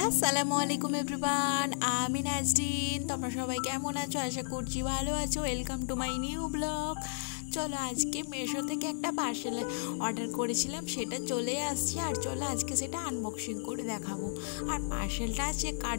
আসসালামু আলাইকুম এভরিওয়ান, আমি নাজরিন। তোমরা সবাই কেমন আছো? আশা করছি ভালো আছো। Welcome to my new blog. চলো, আজকে মেশো থেকে একটা পার্সেল অর্ডার করেছিলাম, সেটা চলে আসছে। আর চলো আজকে সেটা আনবক্সিং করে দেখাবো। আর পার্সেলটা আছে কার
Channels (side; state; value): right; silent; digital silence